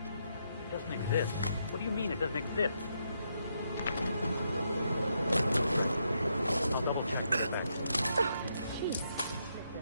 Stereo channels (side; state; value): both; inverted; correlation -0.79